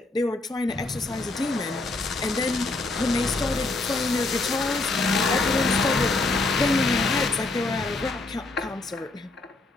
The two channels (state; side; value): quieter; right; 3.2 dB